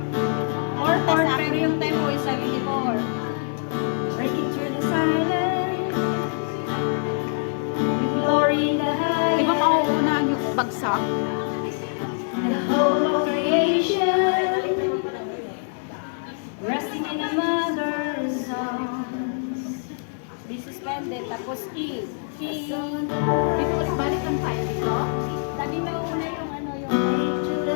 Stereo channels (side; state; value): right; silent; digital silence